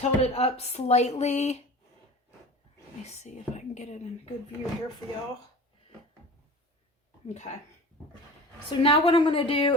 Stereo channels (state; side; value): normal; both; correlation 0.37